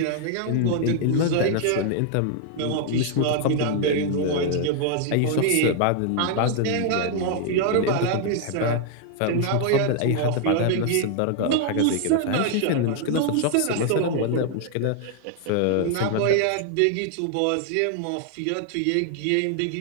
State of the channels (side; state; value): both; different; correlation 0.00